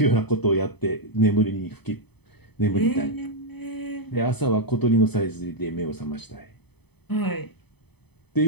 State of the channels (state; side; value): late; right; 0.98 ms